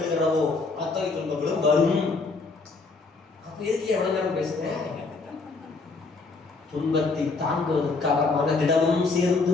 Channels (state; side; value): quieter; right; 4.0 dB